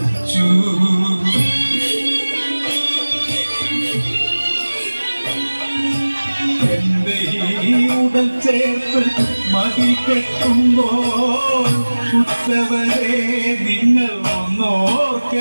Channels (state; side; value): inverted; both; correlation -1.00